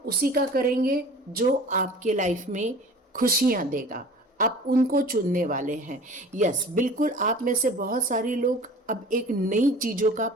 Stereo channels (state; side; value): normal; both; correlation 0.43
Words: का करेंगे जो आपके लाइफ में खुशियां देगा। आप उनको चुनने वाले हैं। यस, बिल्कुल आप में से बहुत सारे लोग अब एक नई चीज़ों का